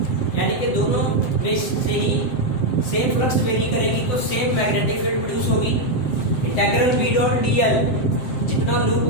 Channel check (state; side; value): late; right; 7.7 ms